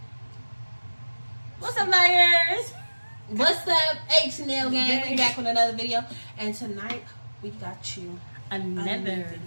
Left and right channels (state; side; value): inverted; both; correlation -1.00